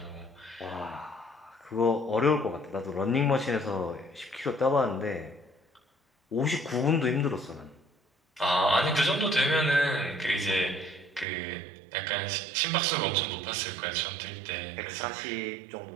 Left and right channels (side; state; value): left; drops out; at 11.2 s